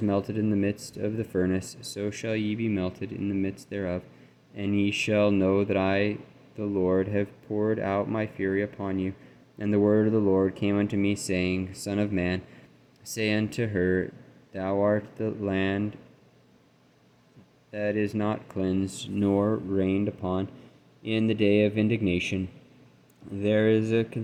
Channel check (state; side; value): identical; both; correlation 1.00